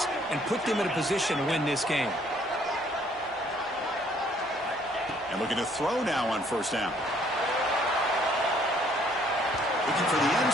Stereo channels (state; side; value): normal; both; correlation 0.63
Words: and put them in a position to win this game. And looking to throw now on 1st down. Looking for the end